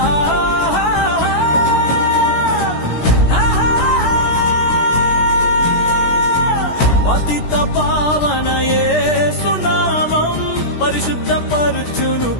పతిత పావన యేసు నామం పరిశుద్ధపరచును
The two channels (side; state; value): right; late; 17 ms